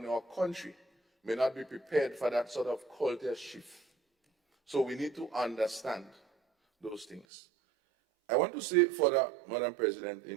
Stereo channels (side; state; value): left; drops out; at 7.2 s